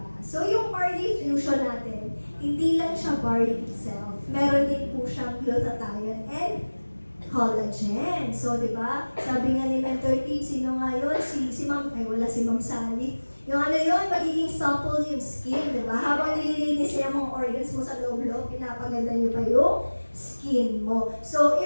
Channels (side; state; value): both; inverted; correlation -1.00